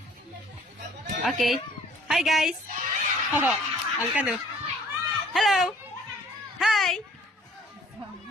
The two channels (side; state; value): both; normal; correlation 0.57